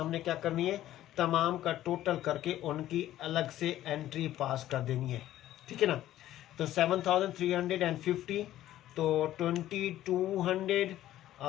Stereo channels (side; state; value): right; quieter; 13.5 dB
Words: क्या करनी है, तमाम का टोटल करके उनकी अलग से एंट्री पास कर देनी है। ठीक है ना, तो 7,350, तो 2,200